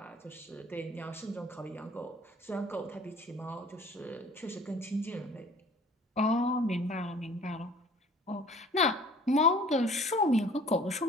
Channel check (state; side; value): normal; both; correlation 0.49